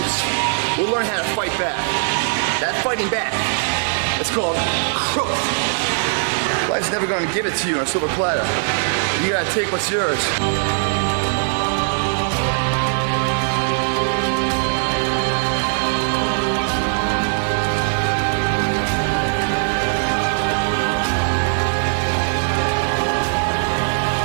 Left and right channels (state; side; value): silent; left; digital silence